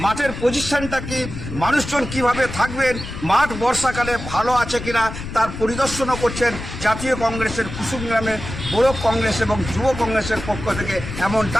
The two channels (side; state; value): left; noise; rumble, 9 dB below the sound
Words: মাঠের পজিশনটা কি, মানুষজন কিভাবে থাকবেন, মাঠ বর্ষাকালে ভালো আছে কিনা তার পরিদর্শনও করছেন জাতীয় কংগ্রেসের কুসুমগ্রামের ব্লক কংগ্রেস এবং যুব কংগ্রেসের পক্ষ থেকে,